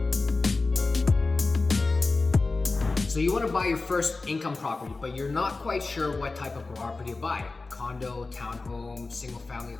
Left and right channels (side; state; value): right; quieter; 3.6 dB